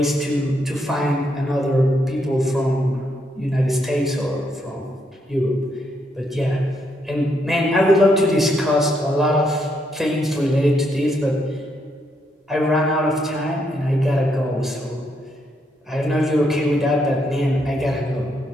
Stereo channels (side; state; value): both; normal; correlation 0.77